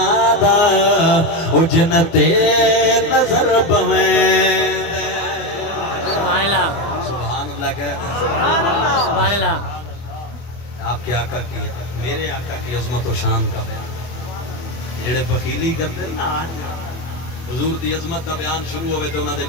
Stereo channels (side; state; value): right; late; 24 ms